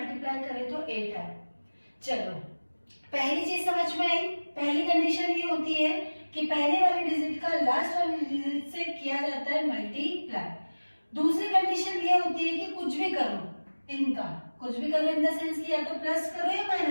करें तो 8 आए। चलो, पहली चीज समझ में आई। पहली कंडीशन ये होती है कि पहले वाली डिजिट का लास्ट वाली डिजिट से किया जाता है मल्टीप्लाई। दूसरी कंडीशन ये होती है कि कुछ भी करो, इनका कुछ भी करो इन द सेंस कि या तो प्लस करो या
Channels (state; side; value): inverted; both; correlation -1.00